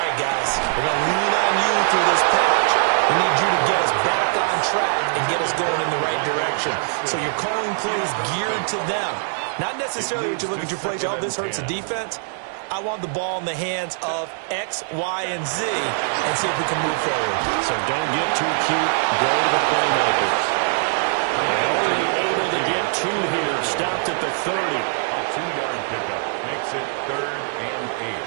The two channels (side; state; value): left; silent; digital silence